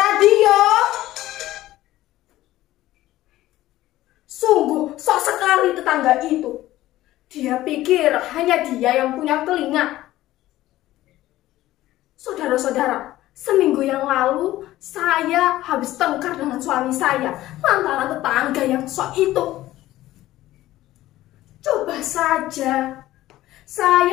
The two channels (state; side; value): quieter; right; 15.5 dB